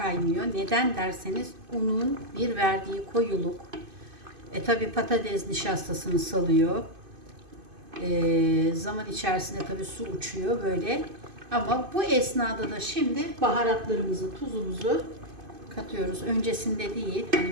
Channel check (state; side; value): late; left; 2.5 ms